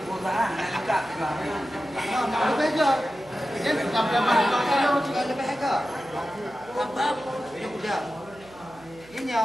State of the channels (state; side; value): noise; right; hum, 24 dB below the sound